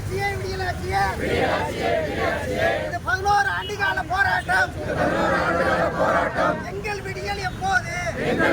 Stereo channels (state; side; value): identical; both; correlation 1.00